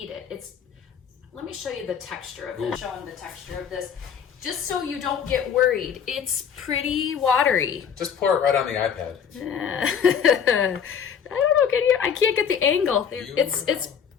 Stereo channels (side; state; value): right; quieter; 7.6 dB